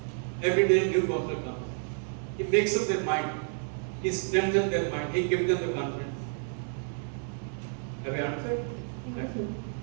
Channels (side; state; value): left; silent; 56 dB below the other